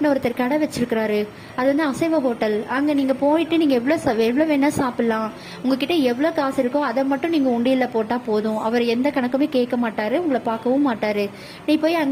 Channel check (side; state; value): both; identical; correlation 1.00